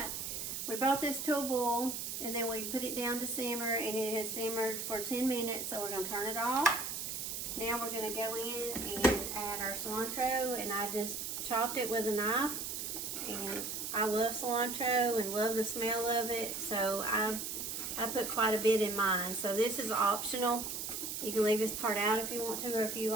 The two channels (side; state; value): right; noise; hiss, 4 dB below the sound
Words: we brought this to a boil, and then we put it down to simmer, and it has simmered for 10 minutes, so we're gonna turn it off. Now we're gonna go in and add our cilantro, and I just chopped it with a knife, and I love cilantro and love the smell of it, so I put quite a bit in mine. So this is optional. You can leave this part out if you want to, or if you